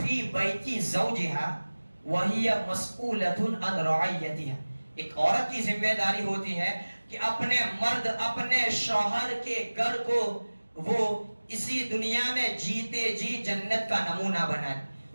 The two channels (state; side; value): inverted; both; correlation -1.00